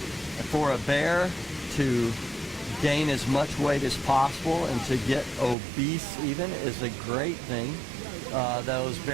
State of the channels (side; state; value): left; drops out; at 5.6 s